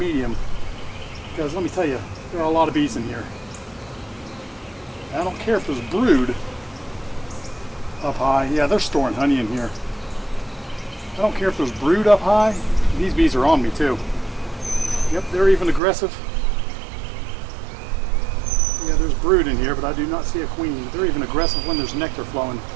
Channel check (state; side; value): drops out; left; at 15.8 s